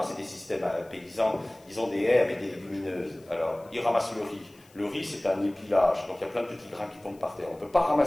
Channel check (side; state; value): left; noise; hiss, 29 dB below the sound